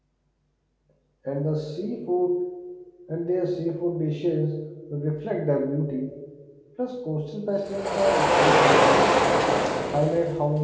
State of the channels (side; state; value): both; identical; correlation 1.00